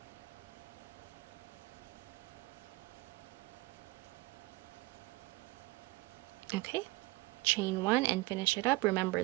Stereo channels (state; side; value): quieter; left; 21.8 dB